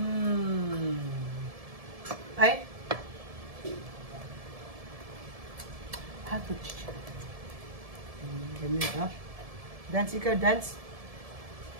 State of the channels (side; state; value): left; late; 1.7 ms